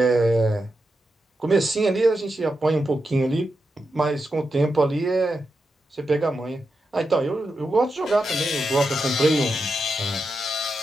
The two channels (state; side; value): normal; both; correlation 0.87